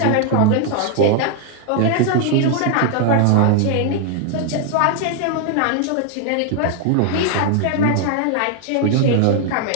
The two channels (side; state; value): both; different; correlation 0.00